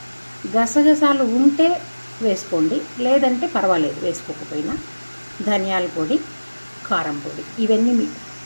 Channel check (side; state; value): both; inverted; correlation -1.00